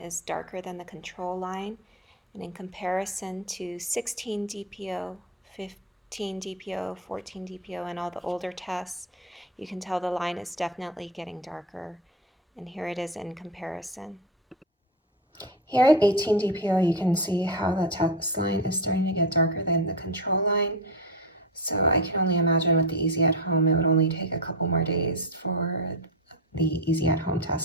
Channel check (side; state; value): both; normal; correlation 0.16